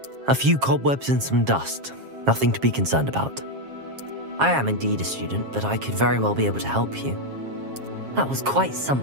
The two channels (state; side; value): late; left; 7.4 ms